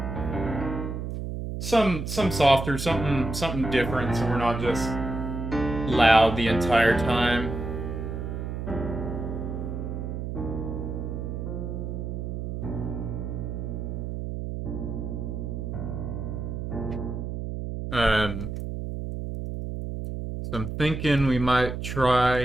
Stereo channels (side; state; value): right; noise; hum, 5 dB below the sound